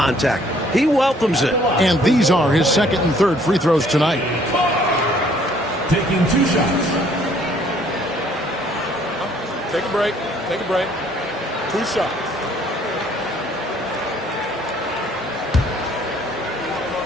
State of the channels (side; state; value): both; normal; correlation 0.61